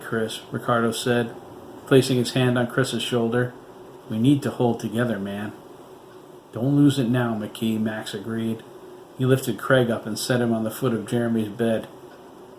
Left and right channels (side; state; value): both; identical; correlation 1.00